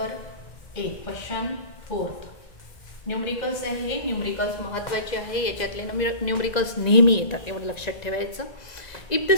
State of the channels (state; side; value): late; right; 2.0 ms